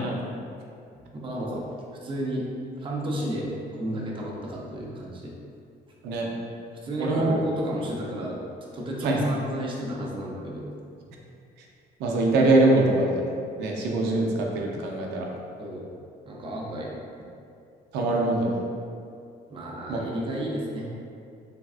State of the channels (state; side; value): normal; both; correlation 0.58